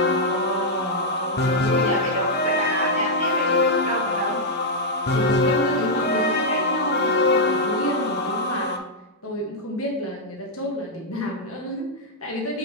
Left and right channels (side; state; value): both; normal; correlation -0.05